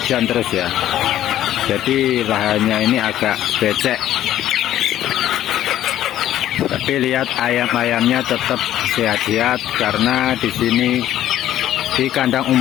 terus ya. Jadi lahannya ini agak becek. Tapi lihat ayam-ayamnya tetap sehat-sehat, karena di sini di kandang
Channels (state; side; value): quieter; right; 12.5 dB